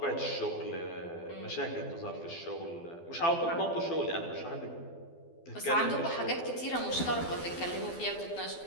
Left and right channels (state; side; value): late; right; 12 ms